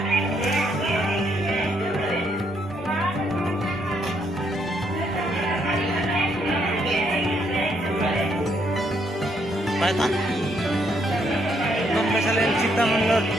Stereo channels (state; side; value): normal; both; correlation 0.73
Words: पायथन कशाला चित्ता म्हणलं.